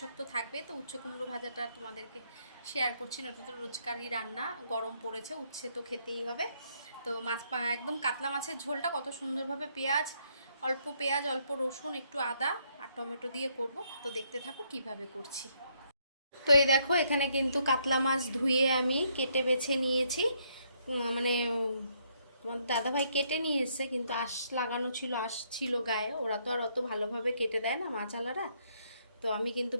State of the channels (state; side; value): inverted; both; correlation -0.72